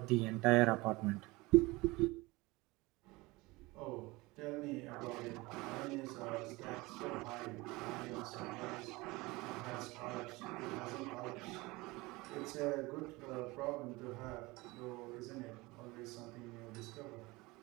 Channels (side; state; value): left; quieter; 22.4 dB